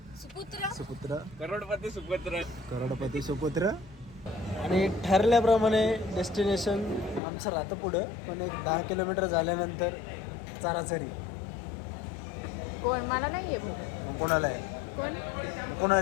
सुपुत्र, करोडपती सुपुत्र. आणि ठरल्याप्रमाणे डेस्टिनेशन आमचं राहतं पुढं, पण एक 10 किलोमीटर झाल्यानंतर चाराचरी. कोण मला नाहीये भाऊ. कोणाला आहे? कोणाला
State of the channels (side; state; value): right; drops out; at 7.2 s